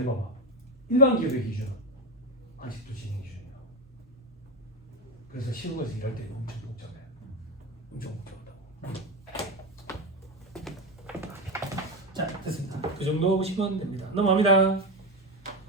일반 기업의 기준은 아직도 진행 기준이야. 그래서 시험에서 일할 때는 엄청 복잡해. 엄청 복잡하다고. 자, 됐습니다. 그 정도 보시면 됩니다. 넘어갑니다.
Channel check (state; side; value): normal; both; correlation 0.14